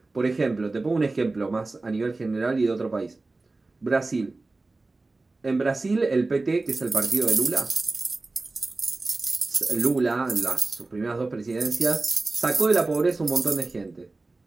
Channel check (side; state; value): left; quieter; 3.3 dB